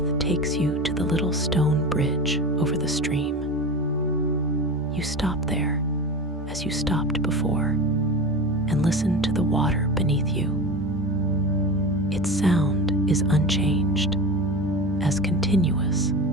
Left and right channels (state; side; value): normal; both; correlation 0.28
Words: takes you to the little stone bridge over the stream. You stop there, as you stopped before, and listen to the water beneath you. Its sound is unchanged, as continuous